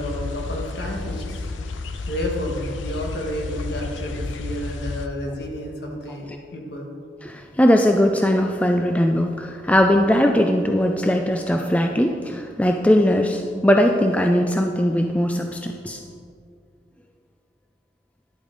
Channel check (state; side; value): normal; both; correlation 0.84